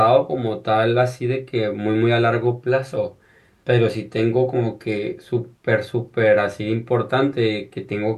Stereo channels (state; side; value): identical; both; correlation 1.00